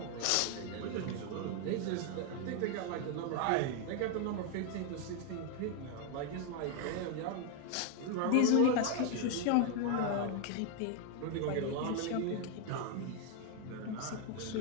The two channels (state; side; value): different; both; correlation 0.01